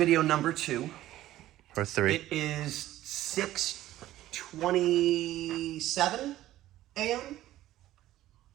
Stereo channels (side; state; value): left; quieter; 14.5 dB